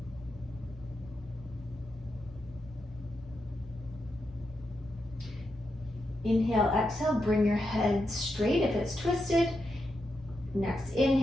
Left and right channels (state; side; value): normal; both; correlation 0.85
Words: Inhale, exhale, bring your head straight if it's twisted. Next,